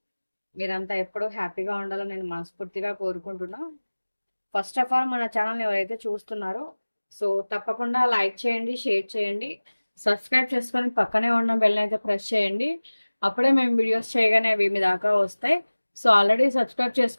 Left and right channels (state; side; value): inverted; both; correlation -1.00